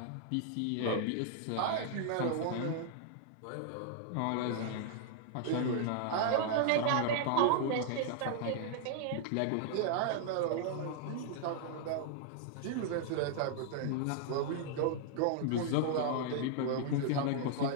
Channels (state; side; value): different; both; correlation -0.01